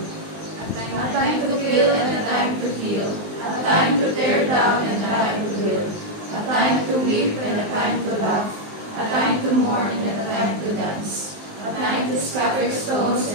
A time to kill and a time to heal. A time to tear down and a time to build. A time to weep and a time to laugh. A time to mourn and a time to dance. A time to scatter stones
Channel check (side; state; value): left; late; 19 ms